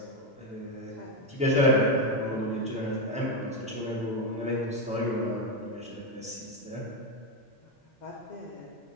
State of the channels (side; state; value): both; normal; correlation 0.09